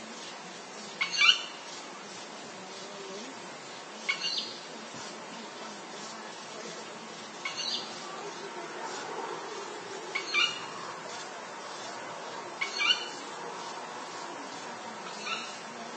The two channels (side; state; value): both; identical; correlation 1.00